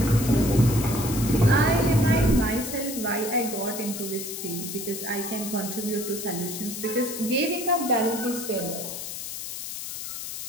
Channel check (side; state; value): left; noise; hiss, 7 dB below the sound